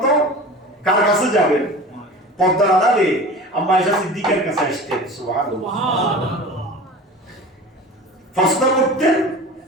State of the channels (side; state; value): both; normal; correlation 0.36